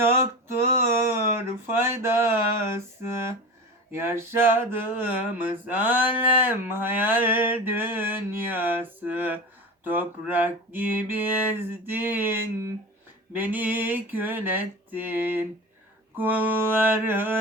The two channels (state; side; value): normal; both; correlation 0.30